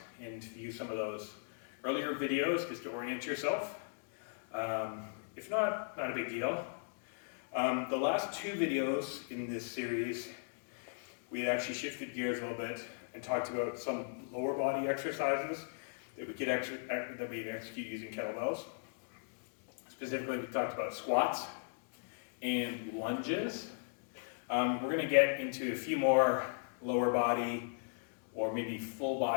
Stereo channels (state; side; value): silent; right; digital silence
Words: and view some of those earlier videos just to orient yourself. If not, not a big deal. The last two videos in this series, we had actually shifted gears a little bit and talked about some lower body exercises that we could execute using kettlebells. Specifically, we talked about squats and lunges. We're going to get into a few more lower body or maybe full